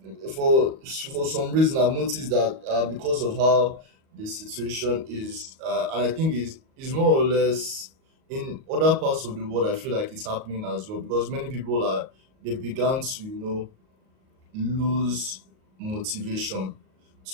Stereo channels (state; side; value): late; left; 38 ms